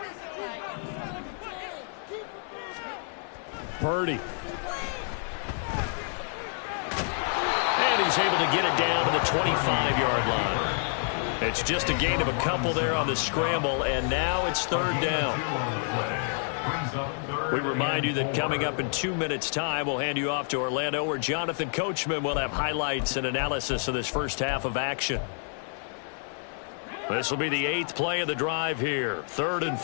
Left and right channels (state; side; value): silent; right; 57 dB below the other